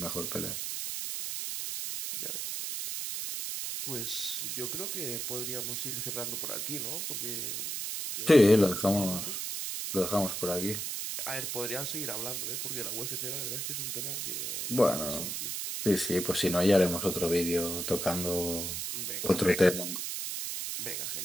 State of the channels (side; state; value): right; noise; hiss, 3 dB below the sound